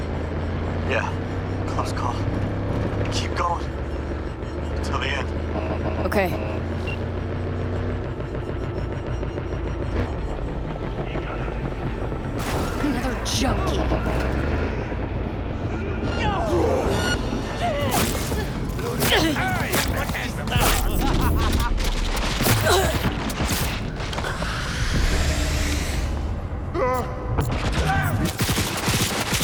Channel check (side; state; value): both; identical; correlation 1.00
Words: Yeah. Close call. Keep going. Till the end. Okay. Another junkie.